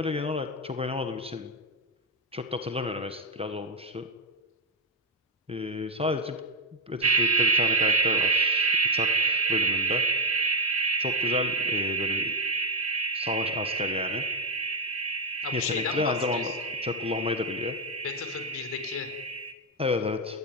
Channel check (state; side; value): normal; both; correlation 0.04